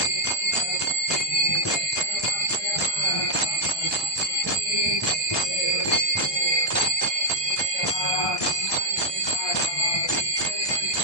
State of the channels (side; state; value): right; late; 1.2 ms